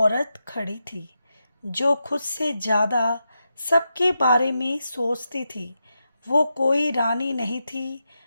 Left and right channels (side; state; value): both; inverted; correlation -0.88